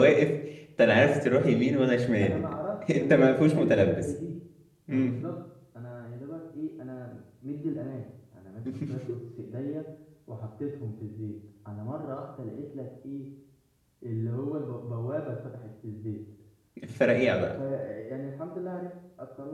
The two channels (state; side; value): identical; both; correlation 1.00